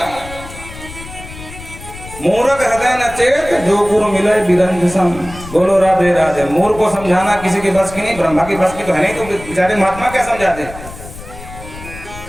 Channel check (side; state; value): left; noise; rumble, 14 dB below the sound